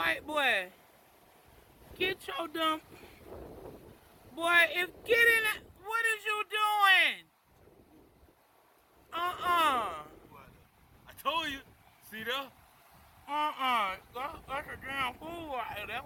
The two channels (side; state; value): both; identical; correlation 1.00